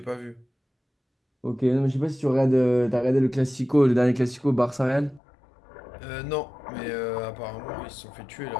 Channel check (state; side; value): drops out; right; at 5.2 s